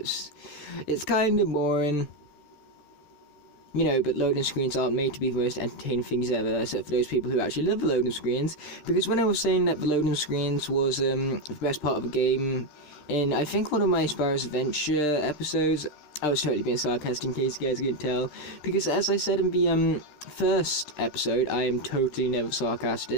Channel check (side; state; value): right; late; 14 ms